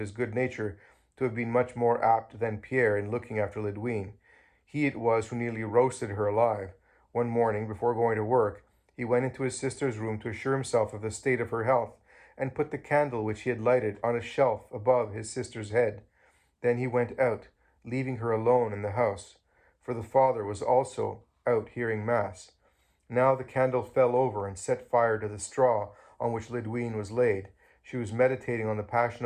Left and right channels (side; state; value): both; identical; correlation 1.00